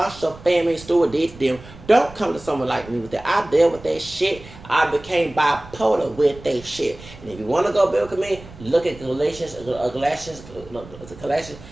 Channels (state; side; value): noise; right; rumble, 18 dB below the sound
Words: family steward did to them. Don't come to someone like me with that. I dealt with that shit. I became bipolar with that shit. And if you want to go biblical me, look at Galatians